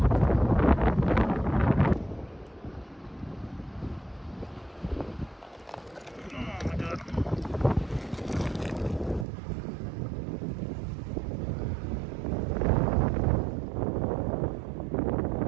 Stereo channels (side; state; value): left; drops out; at 9.2 s